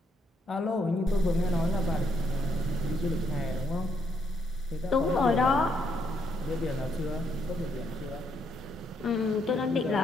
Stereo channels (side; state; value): both; normal; correlation 0.74